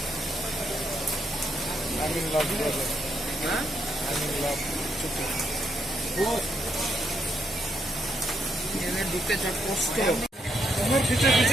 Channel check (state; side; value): normal; both; correlation 0.77